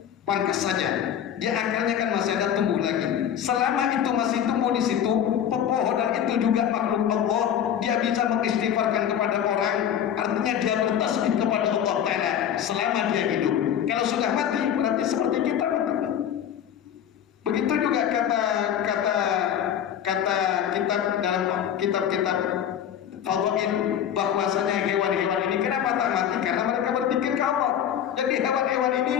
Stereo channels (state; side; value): quieter; right; 9.5 dB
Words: pangkas saja. Dia akarnya kan masih ada tumbuh lagi. Selama itu masih tumbuh di situ, pepohonan itu juga makhluk Allah. Dia bisa mengistighfarkan kepada orang. Artinya dia bertasbih kepada Allah Ta'ala selama dia hidup. Kalau sudah mati, berarti seperti kita mati. Begitu juga kata kitab dalam kitab-kitab fadhail, bahwasanya hewan-hewan ini kenapa tak mati? Karena mereka berpikir ke Allah. Jadi hewan-hewan ini,